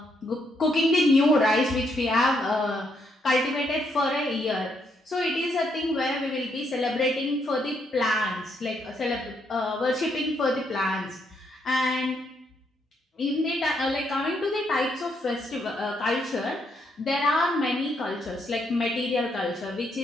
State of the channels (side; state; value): both; normal; correlation 0.75